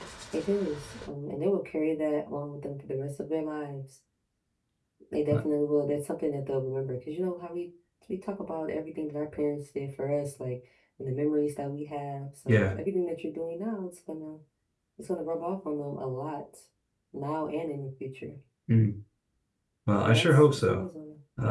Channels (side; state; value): both; identical; correlation 1.00